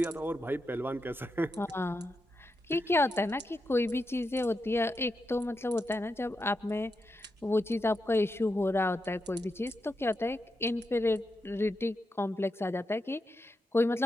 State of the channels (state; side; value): normal; both; correlation 0.86